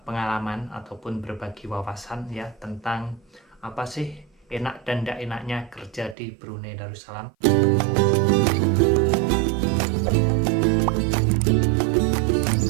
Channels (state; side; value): drops out; left; at 6.2 s